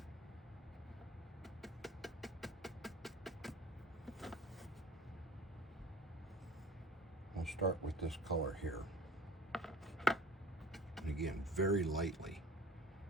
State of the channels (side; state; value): both; normal; correlation 0.45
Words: start with this color here. And again, very lightly.